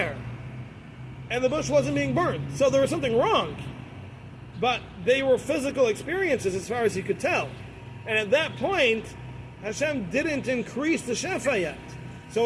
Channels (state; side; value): identical; both; correlation 1.00